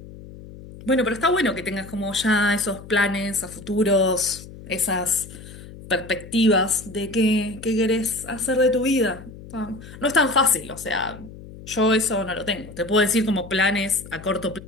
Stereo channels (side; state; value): left; noise; hum, 16 dB below the sound